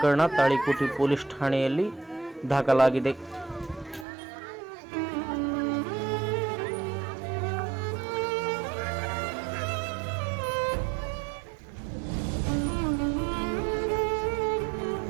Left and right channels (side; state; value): left; drops out; at 4.0 s